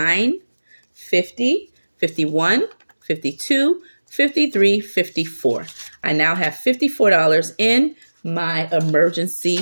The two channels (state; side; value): inverted; both; correlation -1.00